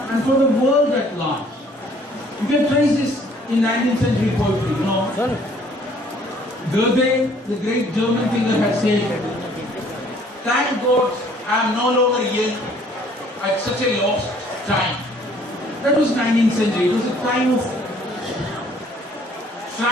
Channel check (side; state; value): both; normal; correlation 0.58